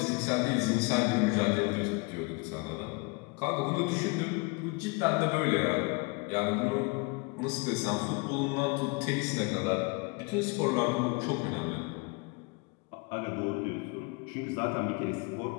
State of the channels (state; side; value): quieter; right; 28.8 dB